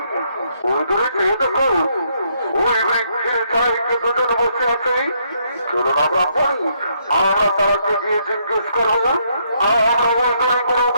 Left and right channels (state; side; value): inverted; both; correlation -0.73